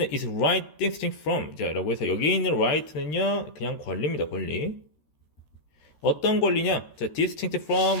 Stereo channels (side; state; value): right; late; 13 ms